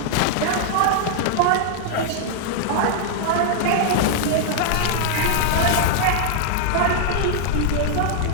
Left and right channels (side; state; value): both; different; correlation -0.01